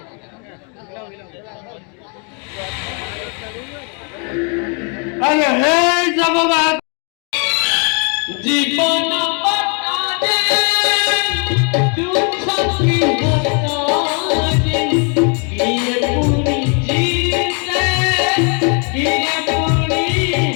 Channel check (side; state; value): right; quieter; 37.7 dB